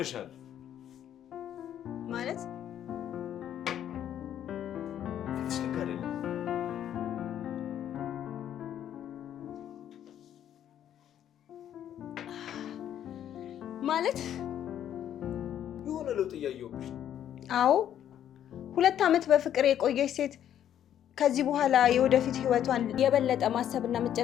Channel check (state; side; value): quieter; right; 10.4 dB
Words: ማለት ፊትሽ ልክ አይደለም። ማለት የሆነ ለውጥ እያየሁብሽ ነው። አዎ 2 ዓመት በፍቅር የቆየች ሴት ከዚህ በኋላ የወደፊት ህይወቷን የበለጠ ማሰብና